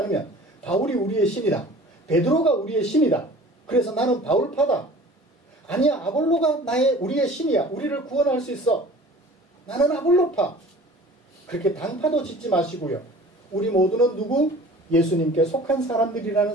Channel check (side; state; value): both; normal; correlation 0.45